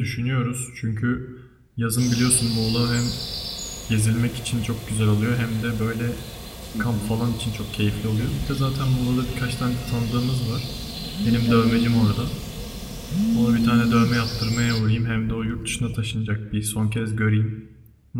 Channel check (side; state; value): both; identical; correlation 1.00